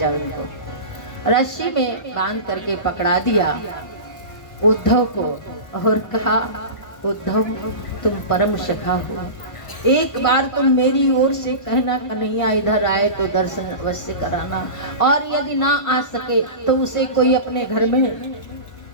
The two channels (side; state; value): right; late; 1.5 ms